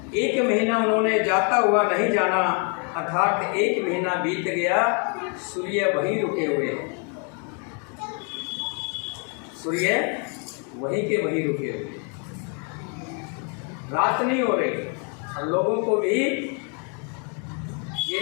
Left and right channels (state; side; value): quieter; right; 38.6 dB